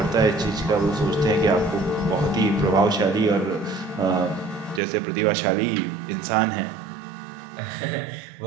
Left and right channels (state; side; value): drops out; left; at 4.8 s